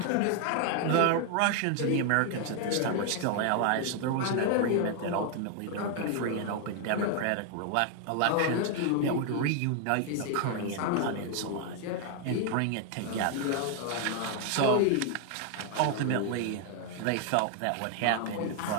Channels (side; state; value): both; different; correlation 0.00